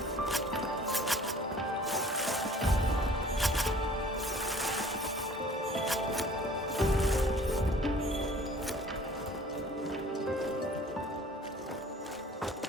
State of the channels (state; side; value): normal; both; correlation 0.50